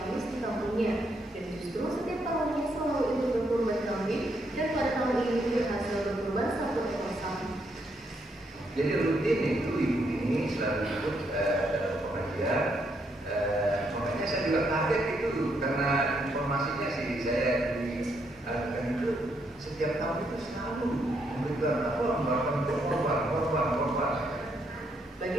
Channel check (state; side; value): normal; both; correlation 0.75